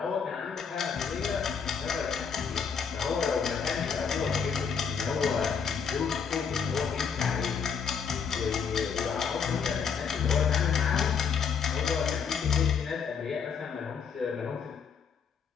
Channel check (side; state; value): right; quieter; 6.5 dB